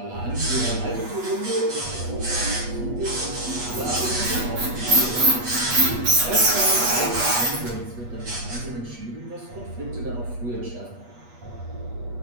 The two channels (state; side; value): late; left; 8.3 ms